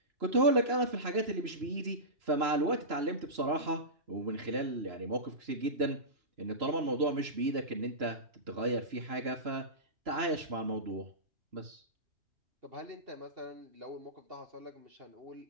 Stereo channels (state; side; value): late; left; 3.0 ms